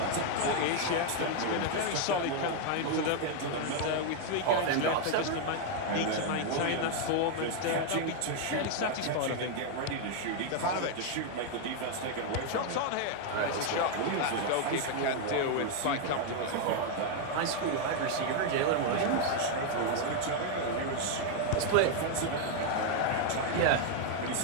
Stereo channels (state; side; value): different; both; correlation 0.00